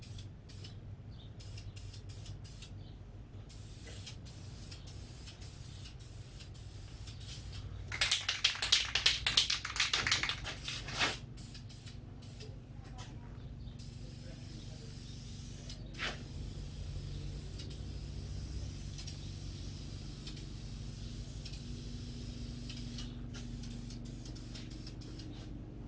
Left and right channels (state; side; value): identical; both; correlation 1.00